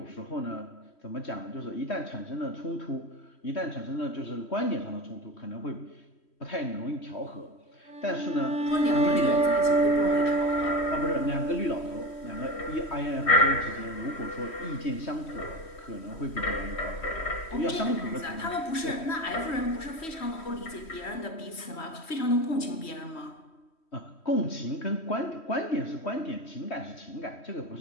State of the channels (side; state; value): right; late; 3.1 ms